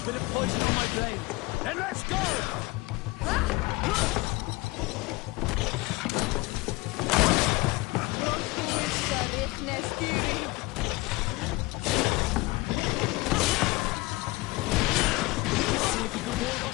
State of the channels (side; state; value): right; quieter; 22.5 dB